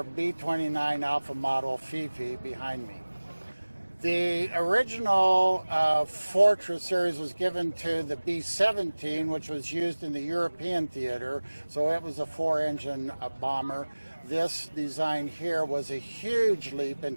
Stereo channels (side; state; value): both; inverted; correlation -1.00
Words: B-29 Alpha model Fifi behind me. The original Fortress series was given to the B-17, which was used in the European theater, so it was a 4-engine bomber. This design here was a huge leap in